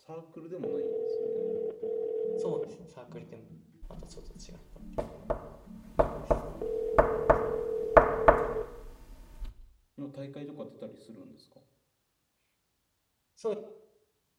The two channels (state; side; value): identical; both; correlation 1.00